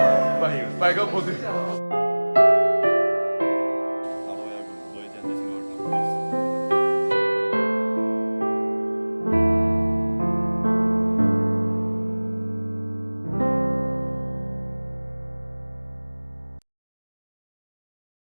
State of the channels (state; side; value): inverted; both; correlation -1.00